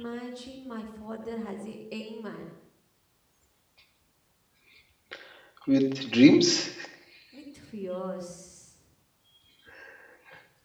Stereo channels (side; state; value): both; identical; correlation 1.00